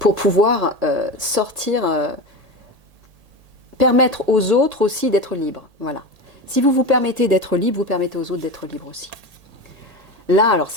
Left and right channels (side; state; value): left; late; 1.7 ms